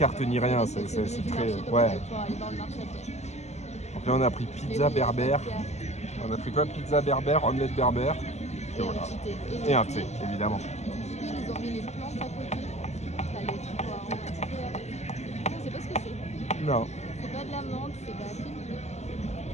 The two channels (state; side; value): late; right; 0.33 ms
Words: ni rien, c'est très... Ouais. Donc là, on a pris pizza berbère. On a pris quoi? Pizza berbère, omelette berbère. Et voilà. Et un thé, évidemment. Ils ont mis les plantes à côté. T'as les trucs aromatiques. Je sais pas ce que c'est. Non. C'est pas de la menthe, c'est de la fine.